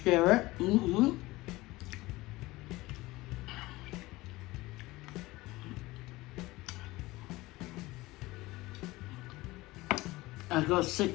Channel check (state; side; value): quieter; right; 19.9 dB